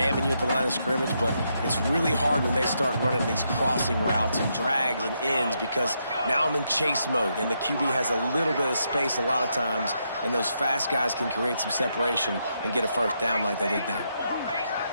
you at the line of scrimmage, but it's really hard when they start running these crossing routes and drags and ends because now I'm in chase mode, and the QB has a little bit of space a lot of times, and those fast guys can create some separation and get a 1st down like they did there.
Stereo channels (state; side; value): inverted; both; correlation -0.79